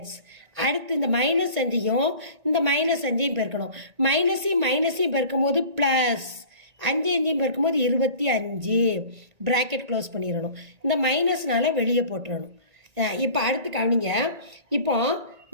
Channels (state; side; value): late; left; 1.9 ms